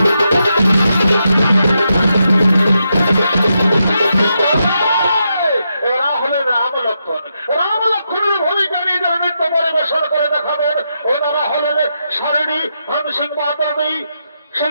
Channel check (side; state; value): both; inverted; correlation -0.84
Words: রাম লক্ষ্মণের ভূমিকা নিয়ে যারা নৃত্য পরিবেশন করে দেখাবেন ওনারা হলেন সারিণী ধনসিংহ মাতাবী